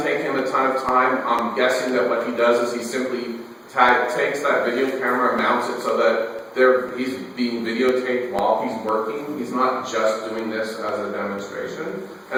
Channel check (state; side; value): identical; both; correlation 1.00